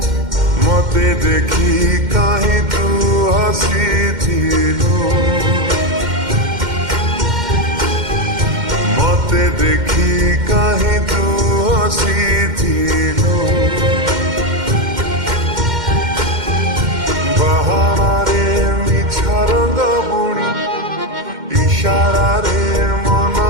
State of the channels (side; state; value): left; late; 2.1 ms